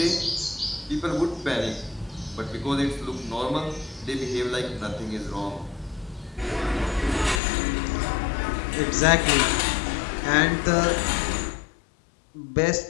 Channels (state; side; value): drops out; right; at 7.4 s